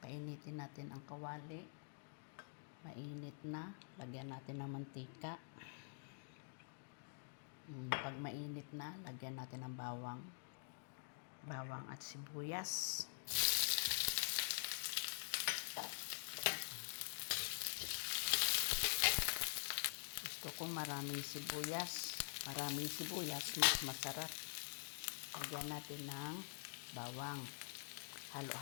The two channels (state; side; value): silent; right; digital silence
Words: natin ang kawali. Mainit na. Lagyan natin ng mantika. Pag mainit na, lagyan natin ng bawang. Bawang at sibuyas. Gusto ko maraming sibuyas. Maraming sibuyas, mas masarap. Lagyan natin ng bawang.